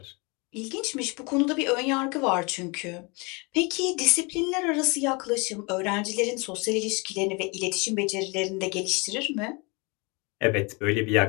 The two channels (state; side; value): quieter; right; 29.2 dB